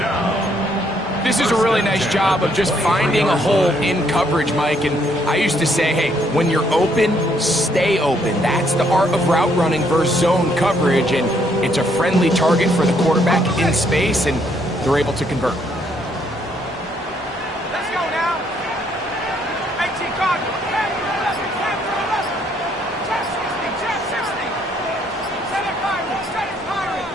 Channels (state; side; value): normal; both; correlation 0.70